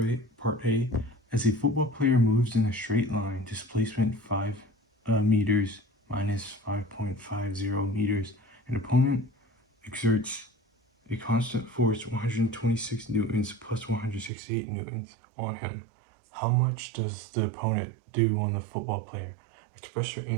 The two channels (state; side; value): drops out; left; at 14.3 s